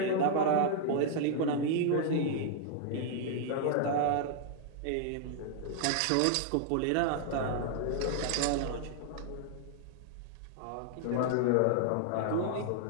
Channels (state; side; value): different; both; correlation -0.01